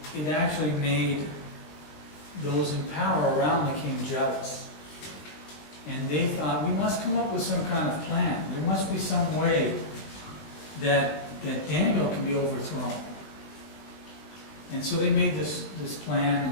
it actually made those in power around the king jealous. And they thought, we must come up with some kind of plan. There must be some way that Daniel can be overthrown. And so they made this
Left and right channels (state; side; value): late; right; 20 ms